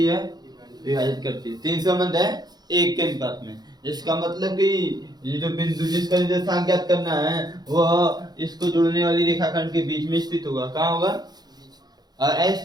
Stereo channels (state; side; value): late; left; 0.19 ms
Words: है, विभाजित करती है। तीन संबंध है एक के अनुपात में। इसका मतलब कि ये जो बिंदु जिसका निर्देशांक ज्ञात करना है वह इसको जोड़ने वाली रेखाखंड के बीच में स्थित होगा। कहाँ होगा? और